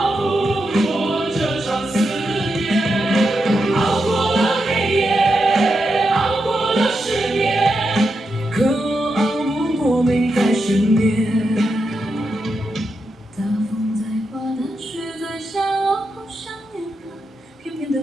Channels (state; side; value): normal; both; correlation 0.86